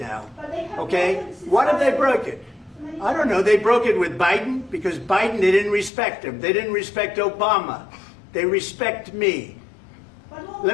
Okay? What if they broke it? I don't know. They broke it with Biden, because Biden, they didn't respect him. They didn't respect Obama. They respect me.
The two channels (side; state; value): right; drops out; at 5.9 s